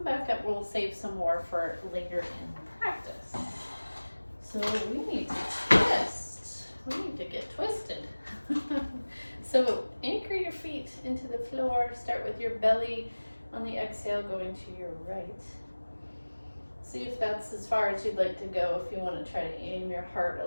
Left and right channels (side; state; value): both; inverted; correlation -1.00